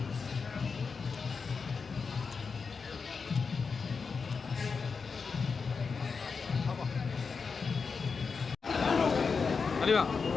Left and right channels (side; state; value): right; quieter; 5.2 dB